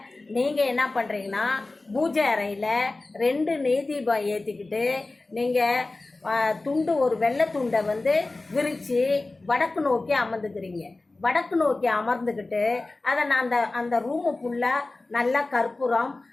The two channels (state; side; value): quieter; right; 3.2 dB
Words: நீங்கள் என்ன பண்ணுறீங்கன்னா, பூஜை அறையில் 2 நெய் தீபம் ஏற்றிக்கிட்டு நீங்கள் துண்டு, ஒரு வெள்ளை துண்டை விரித்து வடக்கு நோக்கி அமர்ந்துக்கிறீங்க. வடக்கு நோக்கி அமர்ந்துக்கிட்டு அதை நான் அந்த ரூமு ஃபுல்லாக நல்லா கற்பூரம்